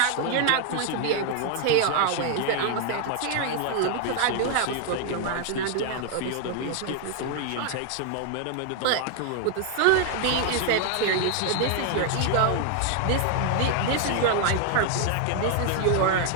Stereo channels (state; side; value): different; both; correlation 0.00